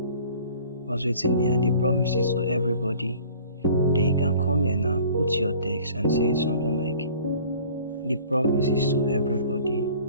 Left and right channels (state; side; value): inverted; both; correlation -0.49